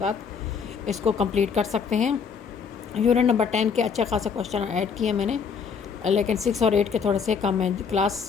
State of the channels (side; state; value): right; quieter; 6.1 dB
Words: इसको कंप्लीट कर सकते हैं। यूनिट नंबर 10 के अच्छे खासा क्वेश्चन ऐड किए मैंने, लेकिन 6 और 8 के थोड़े से कम हैं।